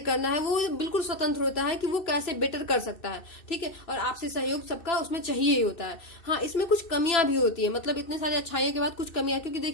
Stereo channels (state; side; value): late; right; 2.7 ms